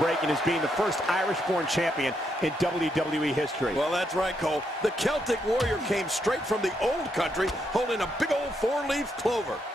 is being the first Irish-born champion in WWE history. Well, that's right, Cole. The Celtic Warrior came straight from the old country holding a big old four-leaf clover.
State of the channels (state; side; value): normal; both; correlation 0.78